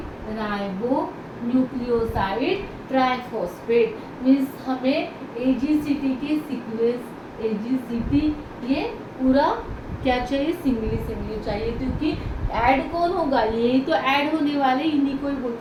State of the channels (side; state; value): both; identical; correlation 1.00